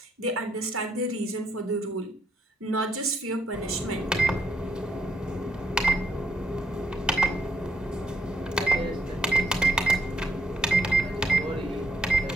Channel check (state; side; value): normal; both; correlation 0.76